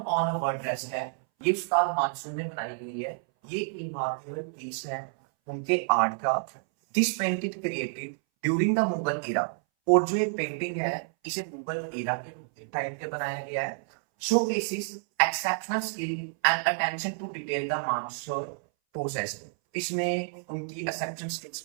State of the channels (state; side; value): silent; left; 58 dB below the other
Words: on a word rest है, ये उस्ताद मानसूर ने बनाई हुई है। ये रिमार्केबल पीस है उनके आर्ट का। This painted created during the Mughal era. और जो ये पेंटिंग है इसे मुगल एरा के टाइम पे बनाया गया है। Showcases exceptional skill and attention to detail the Mansur process. तो इसमें उनकी एक्सेप्शनल स्किल्स